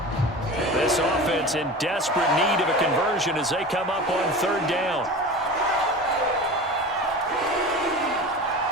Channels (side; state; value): both; normal; correlation 0.33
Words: This offense in desperate need of a conversion as they come up on third down.